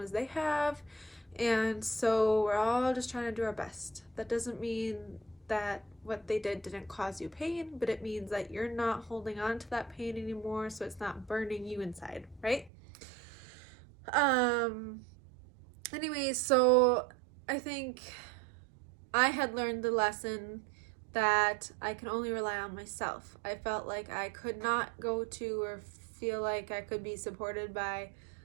they have. And so we're all just trying to do our best. That doesn't mean that what they did didn't cause you pain, but it means that you're not holding on to that pain anymore, so it's not burning you inside, right? Um Anyways, so I think I had learned the lesson that I can only rely on myself. I felt like I could not go to or feel like I could be supported by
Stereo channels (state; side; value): drops out; left; at 12.7 s